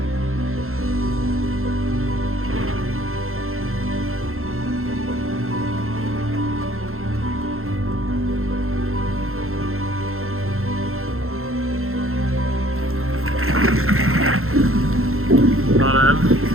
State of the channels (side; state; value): left; late; 0.62 ms